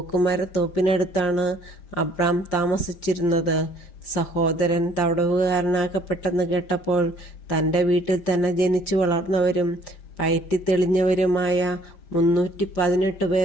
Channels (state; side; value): late; right; 5.0 ms